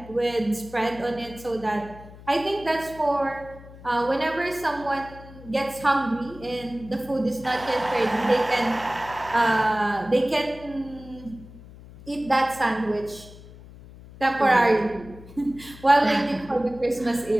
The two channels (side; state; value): left; noise; hum, 18 dB below the sound